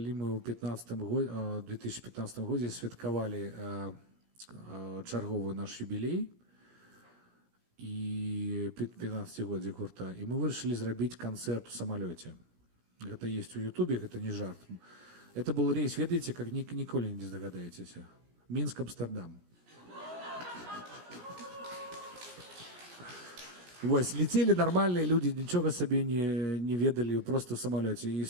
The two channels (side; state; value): left; late; 17 ms